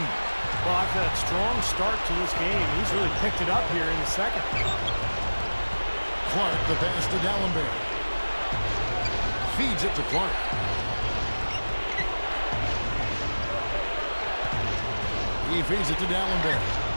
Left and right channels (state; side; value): inverted; both; correlation -1.00